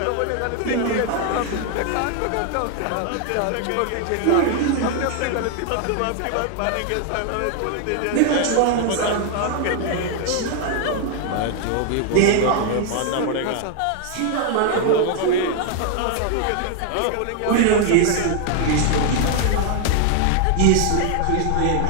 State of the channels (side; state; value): both; different; correlation 0.00